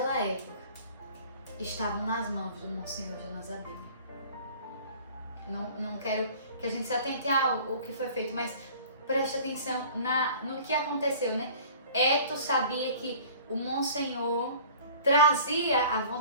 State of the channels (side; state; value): both; inverted; correlation -0.47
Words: época, estavam nas mãos do Monsenhor Jonas Abib. Não quero que a gente se atente ao que foi feito, mas preste atenção no que aconteceu, né? Eto sabia que o Monsenhor trazia a